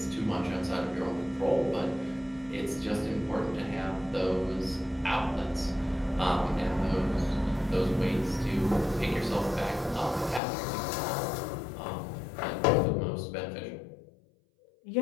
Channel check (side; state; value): right; drops out; at 10.4 s